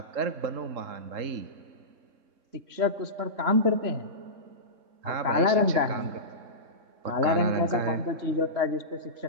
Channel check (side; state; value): left; late; 3.6 ms